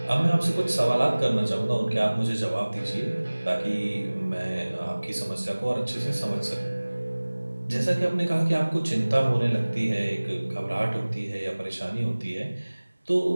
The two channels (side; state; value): both; inverted; correlation -1.00